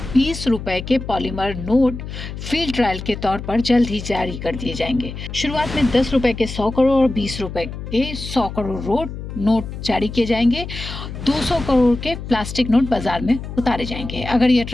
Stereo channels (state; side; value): noise; left; hum, 9 dB below the sound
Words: 20 रुपए के पॉलीमर नोट फील्ड ट्रायल के तौर पर जल्द ही जारी कर दिए जाएंगे। शुरुआत में 10 रुपए के 100 करोड़ और 20 रुपए के 100 करोड़ नोट जारी किए जाएंगे। 200 करोड़ के प्लास्टिक नोट बाजार में उतारे जाएंगे। अगर यह